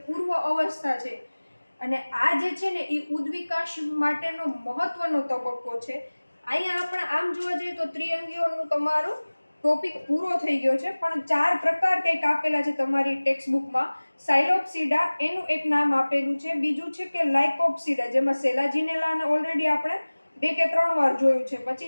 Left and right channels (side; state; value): both; inverted; correlation -1.00